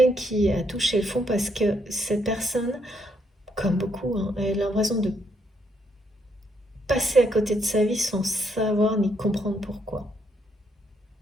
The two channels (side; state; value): both; normal; correlation 0.74